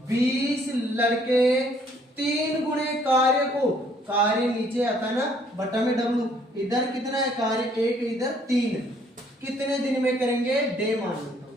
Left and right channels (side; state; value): both; normal; correlation 0.63